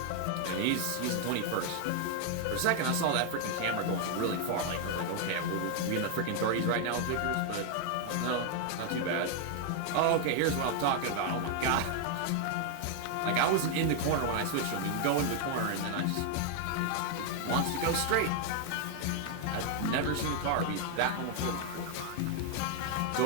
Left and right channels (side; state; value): both; different; correlation 0.00